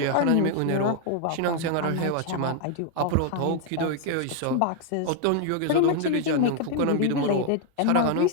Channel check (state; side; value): different; both; correlation 0.00